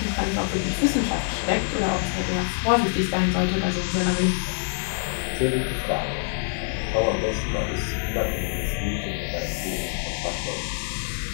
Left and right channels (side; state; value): right; silent; digital silence